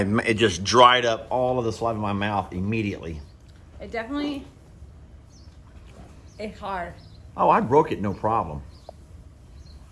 it just dried up all of the saliva in my mouth immediately. It definitely. It's hard. Oh, I broke it, no problem.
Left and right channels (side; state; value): both; identical; correlation 1.00